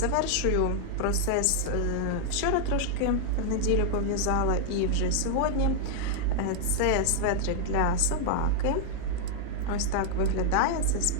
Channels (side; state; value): both; different; correlation -0.01